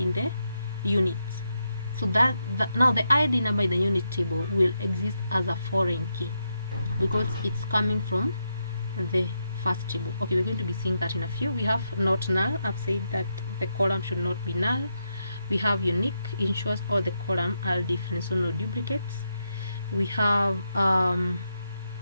the units. So that now the ID number in the unit table will exist as a foreign key because it's coming from the first table. Okay, we're going to be seeing that in a few. We have not null. I've said that the column should not be null. We have unique, ensures all the columns are different, so no duplicates. We have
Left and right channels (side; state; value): both; inverted; correlation -0.83